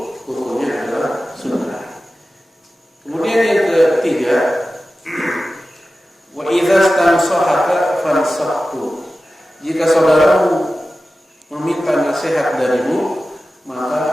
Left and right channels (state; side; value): normal; both; correlation 0.94